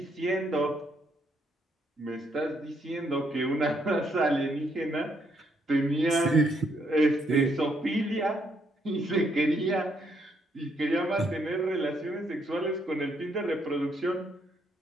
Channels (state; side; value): normal; both; correlation 0.73